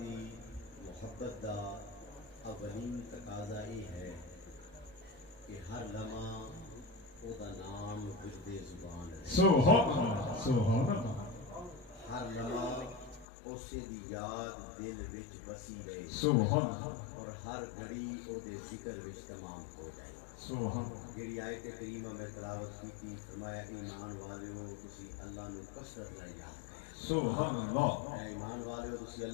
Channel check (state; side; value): drops out; right; at 13.2 s